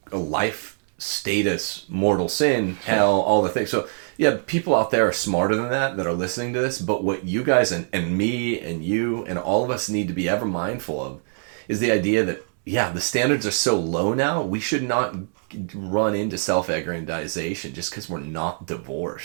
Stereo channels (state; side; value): silent; left; digital silence